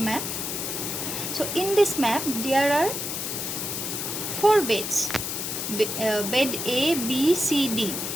So in this map there are four beds. Bed A, B, C, D.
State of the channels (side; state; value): left; noise; hiss, 3 dB below the sound